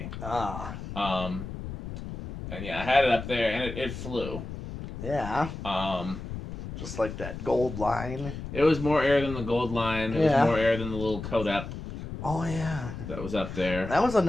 Ah. And yeah, I had it up there, and it flew. Yeah. Just like that gold line. It was more air than the gold line. It was more air than the little Codep. Oh yeah. That was up there. That was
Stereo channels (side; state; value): left; noise; rumble, 9 dB below the sound